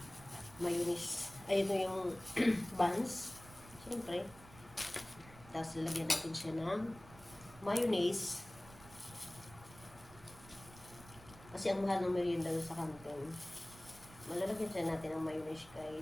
mayonnaise. Ay, ito yung buns. Siyempre. Tapos lalagyan natin siya ng mayonnaise. Kasi ang mahal ng merienda sa kantin. Malalagyan siya natin ng mayonnaise,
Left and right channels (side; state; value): right; noise; rumble, 20 dB below the sound